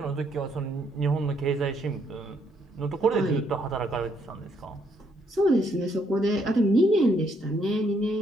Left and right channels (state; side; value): normal; both; correlation 0.72